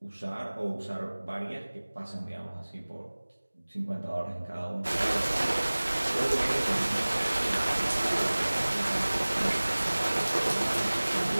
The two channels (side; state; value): both; inverted; correlation -1.00